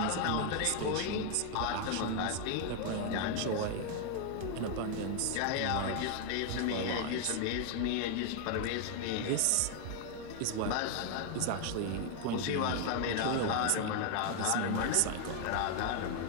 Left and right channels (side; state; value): both; different; correlation 0.00